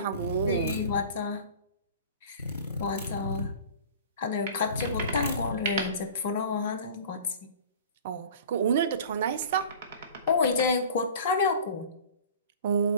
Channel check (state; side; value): inverted; both; correlation -0.41